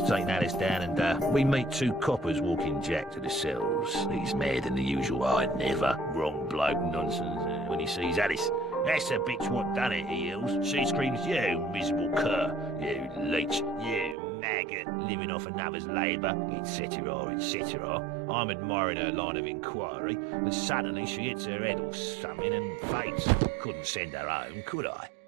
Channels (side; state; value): left; drops out; at 14.2 s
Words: taking Alice down and we meet two coppers walking Jack to the cells. He's mad than the usual I never. Wrong bloke nonsense when he sees Alice. That's the bitch what done it, he yells. She screams, you miserable cur, you leech, you maggot, living off another's labour, etc., etc. I'm admiring her line of inquiry, and suddenly she hits her head or something and faints. Couldn't send her home, could I?